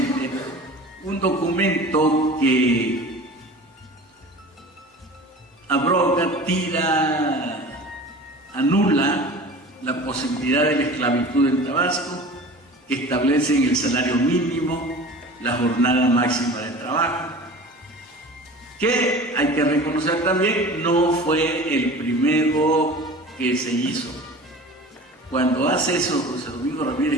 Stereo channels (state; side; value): normal; both; correlation 0.39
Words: un documento que abroga, anula la posibilidad de la esclavitud en Tabasco, que establecen el salario mínimo, la jornada máxima de trabajo, que hay que reconocer también no fue el primero que se hizo. cuando hace eso José Domingo